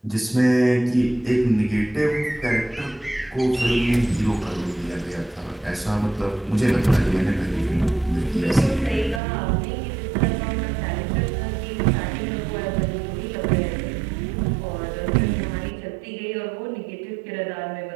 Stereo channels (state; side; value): drops out; left; at 9.2 s